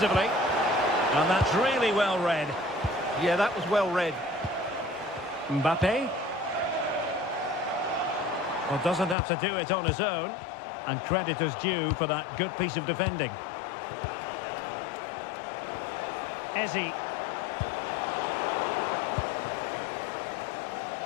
And that's really well read. Yeah, that was well read. Mbappe. Well, doesn't have to do it on his own. And credit is due for that good piece of defending. Ezzy.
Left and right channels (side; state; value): right; drops out; at 9.2 s